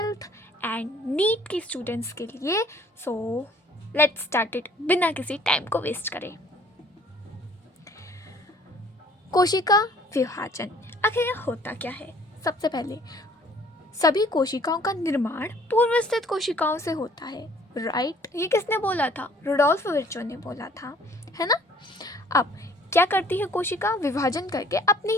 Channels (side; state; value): both; normal; correlation 0.56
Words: एंड नीट की स्टूडेंट्स के लिए। सो लेट्स स्टार्ट इट बिना किसी टाइम को वेस्ट करे। कोशिका विभाजन आखिर यह होता क्या है? सबसे पहले सभी कोशिकाओं का निर्माण पूर्व स्थित कोशिकाओं से होता है, राइट? ये किसने बोला था? रुडोल्फ विर्चो ने बोला था, है ना? अब क्या करती है कोशिका? विभाजन करके अपनी